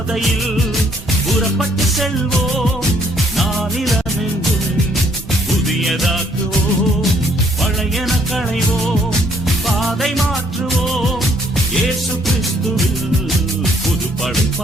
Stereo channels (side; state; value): both; normal; correlation 0.66